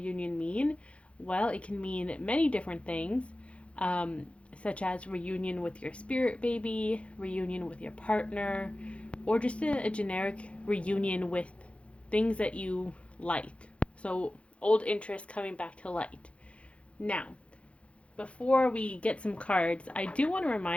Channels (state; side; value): late; right; 0.061 ms